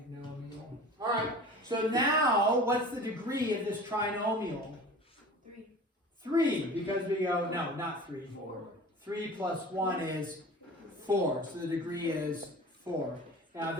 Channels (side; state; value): both; normal; correlation 0.39